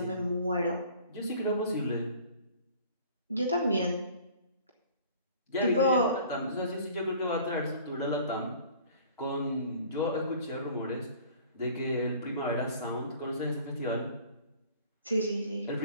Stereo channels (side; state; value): both; inverted; correlation -0.49